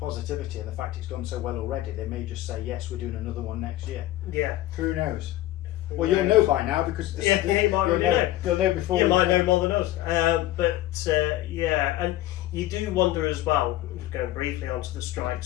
and the fact it's gone so well already, they may just say, yes, we're doing another one next year. Yeah. Who knows? Well, you'll know by now because you might already know. You'll know before. You might know more than us. And you do wonder as well, going briefly onto the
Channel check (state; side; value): quieter; right; 15.1 dB